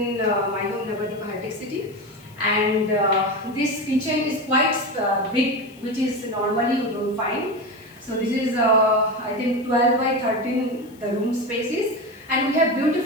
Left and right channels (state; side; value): noise; left; hiss, 27 dB below the sound